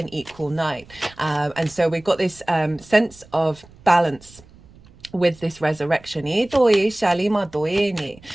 equal night, and so we've got this sense of balance with this resurrection. So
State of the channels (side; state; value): right; noise; rumble, 25 dB below the sound